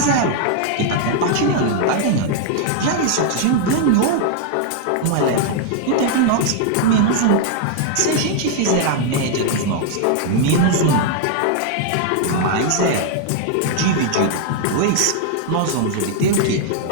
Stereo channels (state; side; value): different; both; correlation 0.00